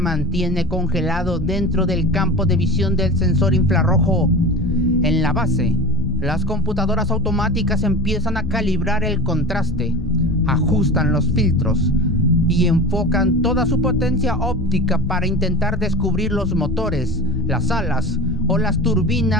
congelado dentro del campo de visión del sensor infrarrojo. En la base, las computadoras automáticas empiezan a calibrar el contraste, ajustan los filtros y enfocan toda su potencia óptica para intentar descubrir los motores, las alas o las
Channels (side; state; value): both; normal; correlation 0.31